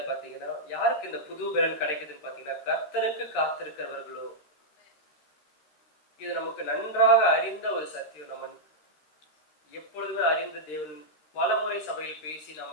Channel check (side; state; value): right; late; 13 ms